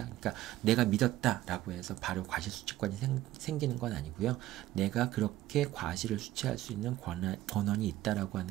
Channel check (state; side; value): quieter; left; 14.9 dB